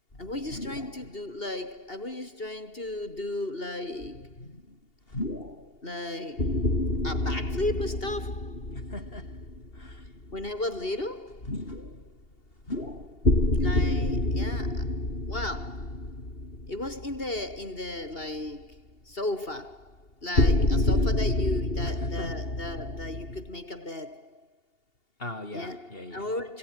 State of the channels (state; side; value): late; right; 2.8 ms